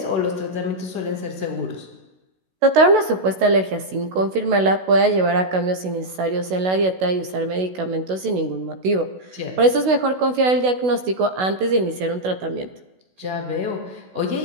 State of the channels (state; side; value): late; left; 16 ms